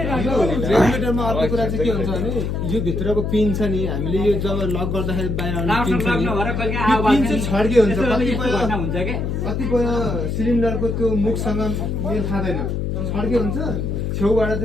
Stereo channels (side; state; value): left; noise; hum, 1 dB below the sound